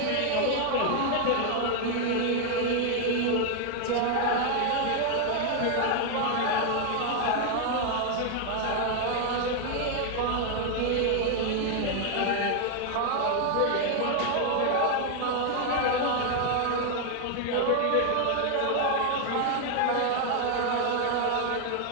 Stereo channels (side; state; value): both; different; correlation 0.00